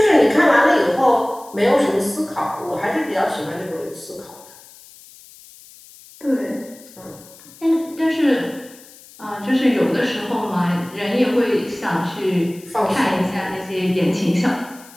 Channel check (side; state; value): left; noise; hiss, 22 dB below the sound